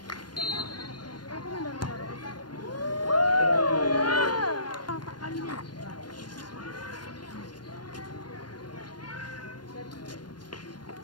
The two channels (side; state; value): right; late; 0.71 ms